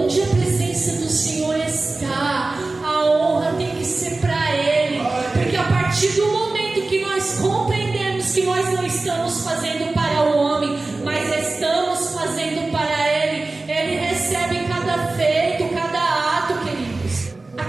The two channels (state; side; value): quieter; left; 3.3 dB